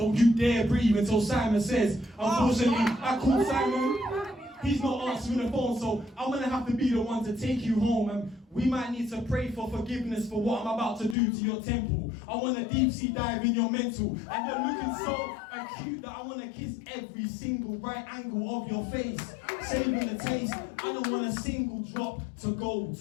you dare breathe until Simon says. Unfortunately, I called Simon. He's not answering the phone, so I'm gonna have to be the one to take you home. And we might need to pray for forgiveness for what I'm about to do to your temple. I want to deep sea dive in your mental. And you're looking so acute that I want to kiss every single right angle of your face. Saving the taste. I don't want a single drop to go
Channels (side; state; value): right; drops out; at 11.2 s